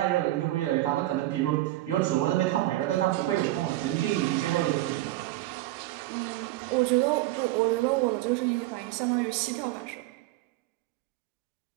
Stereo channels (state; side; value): quieter; left; 16.7 dB